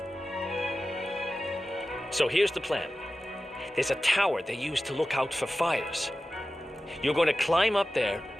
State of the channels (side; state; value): both; normal; correlation 0.94